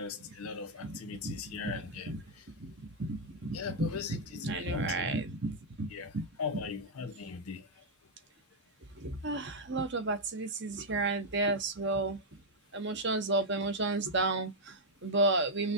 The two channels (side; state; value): both; normal; correlation -0.03